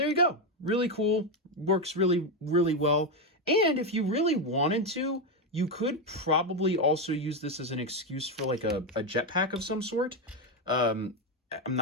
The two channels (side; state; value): both; normal; correlation 0.08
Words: you go. Really cool. Works really, really well. And if you really wanted to, you could probably also use this as an excuse for like a jetpack of some sort. I'm